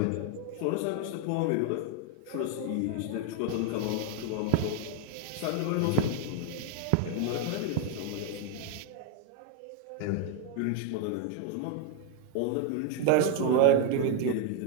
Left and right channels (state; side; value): different; both; correlation 0.00